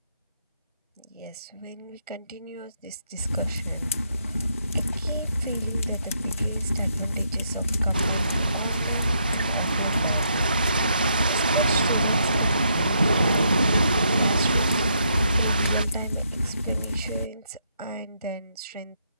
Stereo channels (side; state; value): both; inverted; correlation -0.75